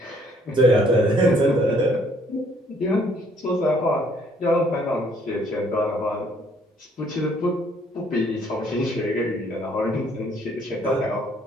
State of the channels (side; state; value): both; normal; correlation 0.64